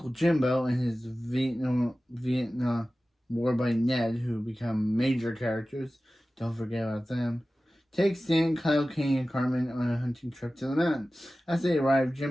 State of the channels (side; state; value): both; normal; correlation 0.96